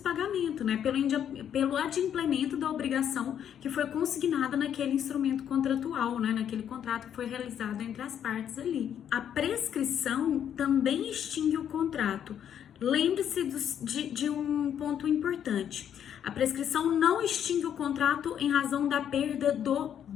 né? Pelo adimplemento da obrigação que foi consignada naquele instrumento contratual, né? Naquele contrato que foi realizado entre as partes ali. A prescrição também extingue o contrato. Lembre-se de um ponto importante. A prescrição não extingue o contrato em razão da perda do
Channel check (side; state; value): right; quieter; 9.3 dB